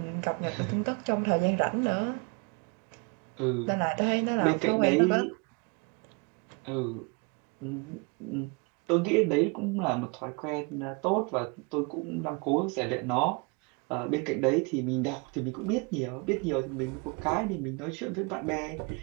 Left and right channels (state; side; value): quieter; left; 31.5 dB